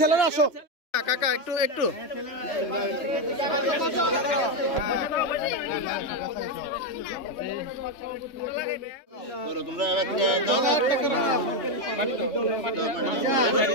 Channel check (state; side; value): late; right; 3.3 ms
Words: আসো কাকা একটু তোমরা